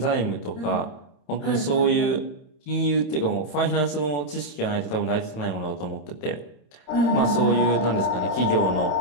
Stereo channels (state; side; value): late; right; 28 ms